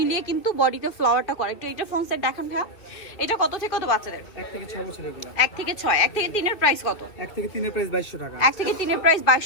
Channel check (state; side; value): late; right; 2.7 ms